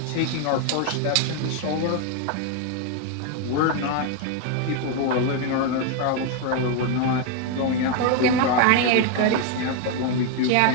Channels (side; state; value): both; different; correlation 0.01